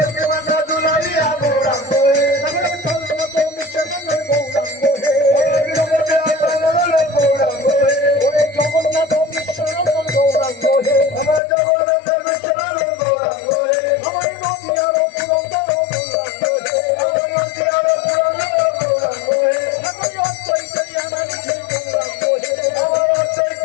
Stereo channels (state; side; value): drops out; right; at 11.4 s